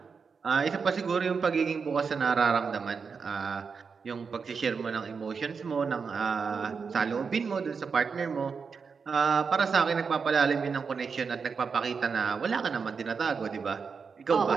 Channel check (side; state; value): left; quieter; 5.5 dB